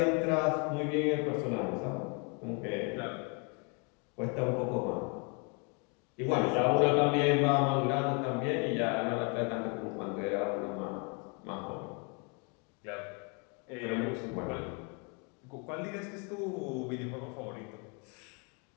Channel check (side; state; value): right; quieter; 33.0 dB